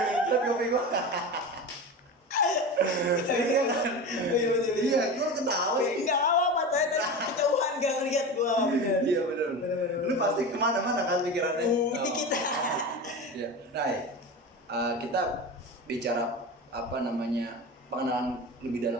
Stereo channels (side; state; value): both; normal; correlation 0.27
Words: Lihat kopi gua. Iya kan? Iya, gua ketawa. Enggak apa-apa, saya dari kejauhan gak ngeliat gua. Bener. Iya benar. Lu pasti kemana-mana kan pikirannya. Ini kita. Iya. Nah, kita bicara apa namanya pengenalan lebih